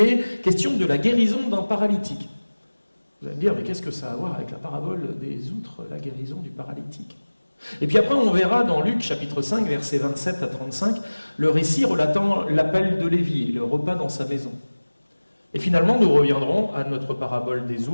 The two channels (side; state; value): both; inverted; correlation -1.00